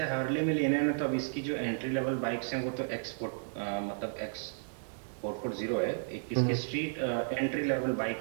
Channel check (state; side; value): silent; left; digital silence